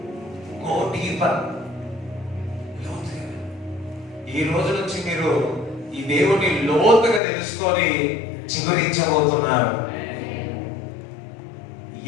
Go deeper. ఈ రోజు నుంచి మీరు ఈ దేవుని లోతుగా తెలుసుకొని చిగురించబోతున్నారు.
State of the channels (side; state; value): right; drops out; at 7.2 s